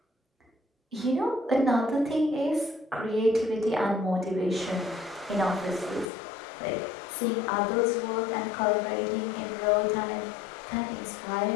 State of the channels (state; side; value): drops out; right; at 6.1 s